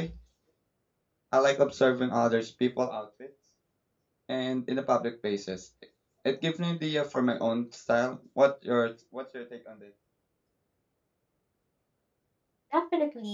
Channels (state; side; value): identical; both; correlation 1.00